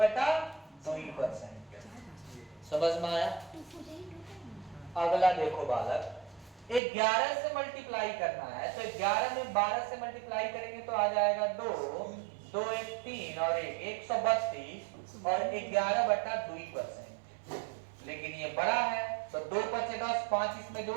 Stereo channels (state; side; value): drops out; left; at 6.8 s